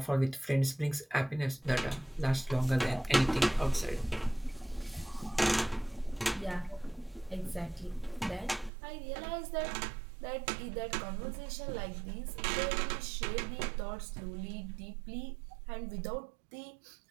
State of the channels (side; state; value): left; drops out; at 8.7 s